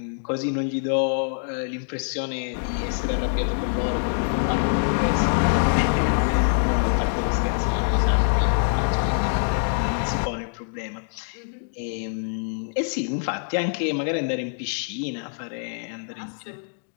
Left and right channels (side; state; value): right; silent; digital silence